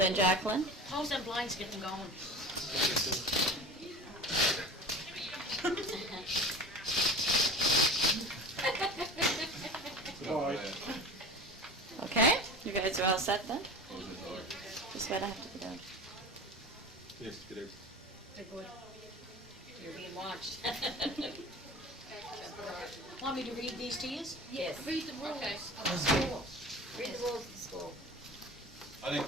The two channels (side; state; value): both; normal; correlation 0.35